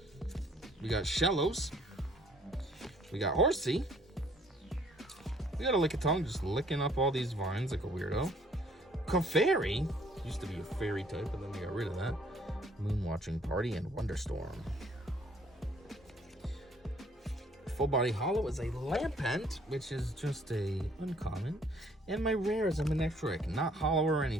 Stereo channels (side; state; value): both; normal; correlation 0.60